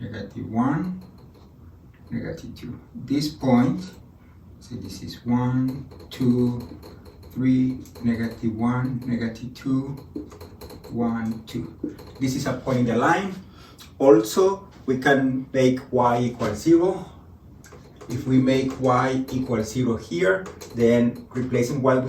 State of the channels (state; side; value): identical; both; correlation 1.00